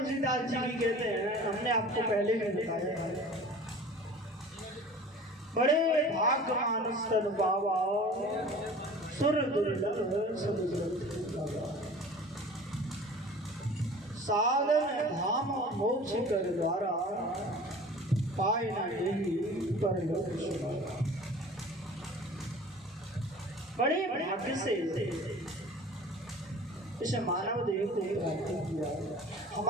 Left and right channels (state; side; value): normal; both; correlation 0.43